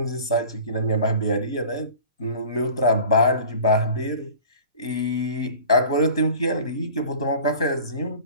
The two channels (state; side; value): inverted; both; correlation -0.43